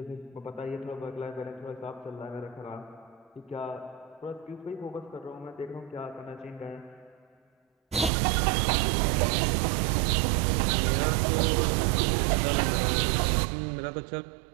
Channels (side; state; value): left; drops out; at 8.1 s